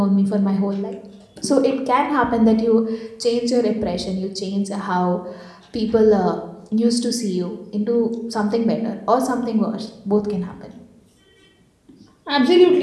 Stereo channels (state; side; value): identical; both; correlation 1.00